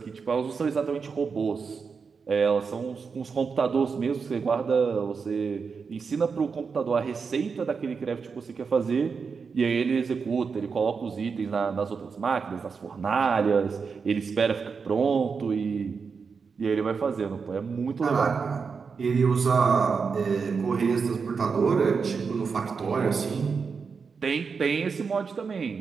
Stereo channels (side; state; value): left; quieter; 5.4 dB